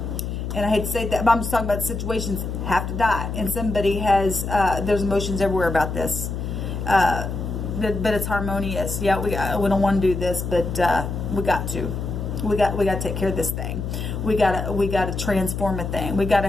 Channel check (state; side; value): noise; left; hum, 4 dB below the sound